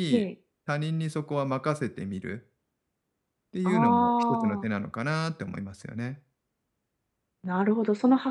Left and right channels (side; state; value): both; identical; correlation 1.00